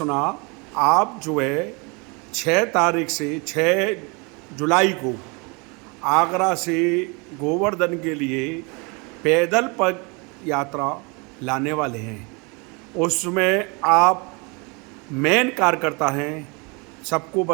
आप जो है 6 तारीख से 6 जुलाई को आगरा से गोवर्धन के लिए पैदल पग यात्रा लाने वाले हैं। उसमें आप मेन कार्यकर्ता हैं, सबको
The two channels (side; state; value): left; quieter; 30.2 dB